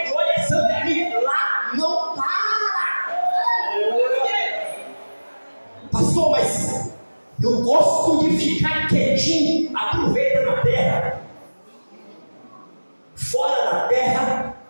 glória, é santa, é amém. Lá não Eu gosto de ficar quietinho. Aproveita na terra. Fora da terra,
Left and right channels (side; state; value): both; inverted; correlation -1.00